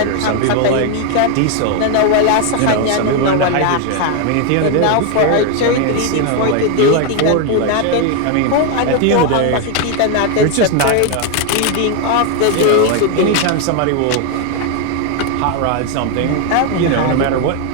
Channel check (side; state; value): both; different; correlation 0.01